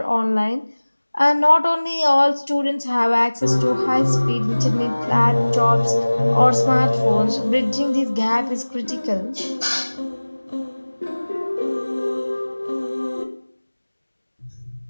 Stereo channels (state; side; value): inverted; both; correlation -1.00